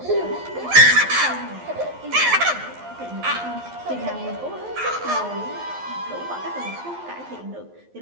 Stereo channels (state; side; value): late; left; 11 ms